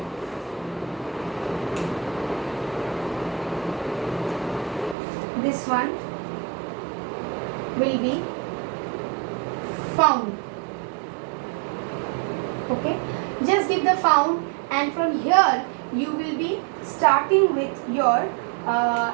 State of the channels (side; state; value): left; drops out; at 5.0 s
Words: this one, will be found. Okay, just give the found, and from here you will be starting with your